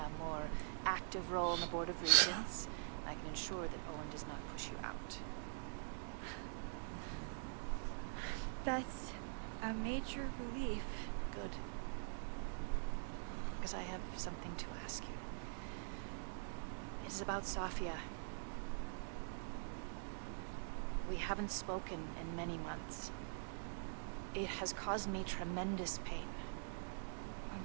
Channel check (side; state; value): left; silent; digital silence